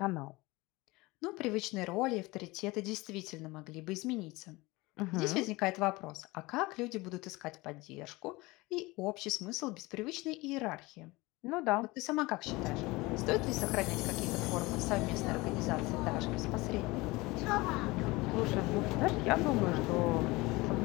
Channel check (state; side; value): quieter; right; 22.2 dB